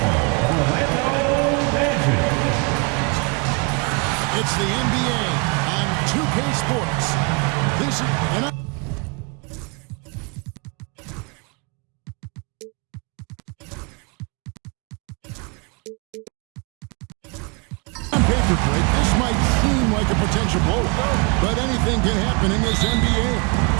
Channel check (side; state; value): left; quieter; 31.4 dB